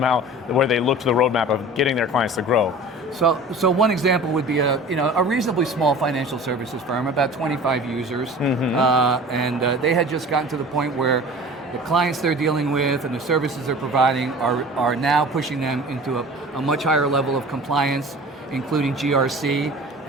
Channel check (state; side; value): normal; both; correlation 0.41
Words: where they look to the roadmap of getting their clients to grow. So one example would be a reasonably small financial services firm, about 25 users, and they had just gotten to the point where the clients they're dealing with and the services they're providing are now pushing them into a much higher level of compliance, including GRC,